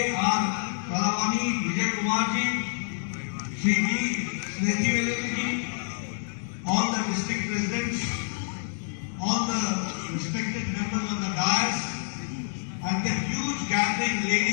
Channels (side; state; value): right; silent; 60 dB below the other